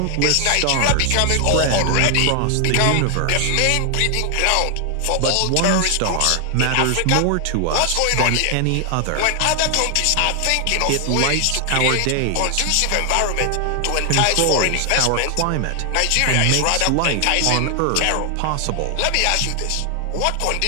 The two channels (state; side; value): different; both; correlation 0.00